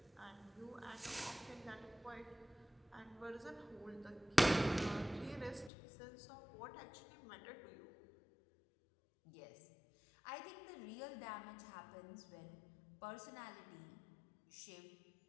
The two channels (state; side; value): drops out; right; at 5.7 s